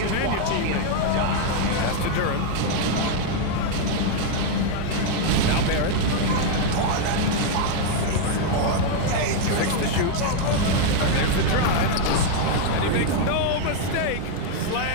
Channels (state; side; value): different; both; correlation 0.00